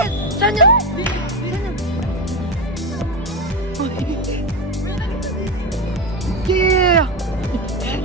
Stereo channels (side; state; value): both; normal; correlation 0.17